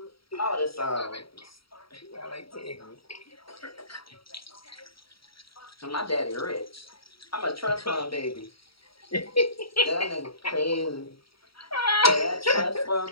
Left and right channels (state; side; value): late; right; 0.75 ms